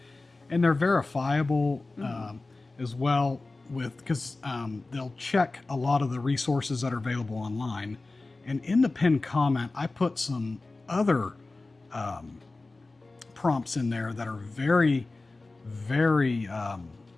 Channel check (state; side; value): quieter; right; 3.3 dB